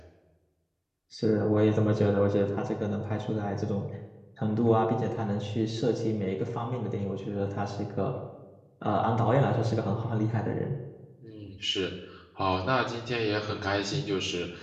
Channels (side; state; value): both; identical; correlation 1.00